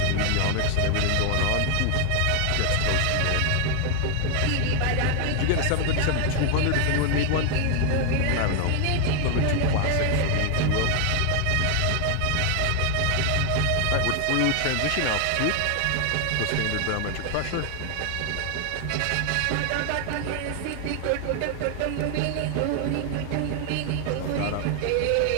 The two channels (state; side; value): different; both; correlation 0.00